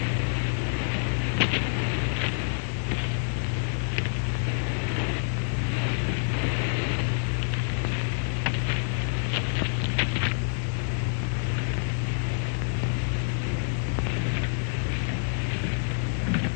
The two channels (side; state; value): right; silent; 60 dB below the other